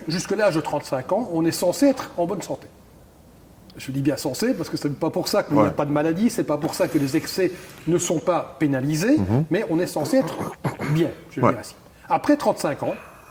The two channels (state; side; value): identical; both; correlation 1.00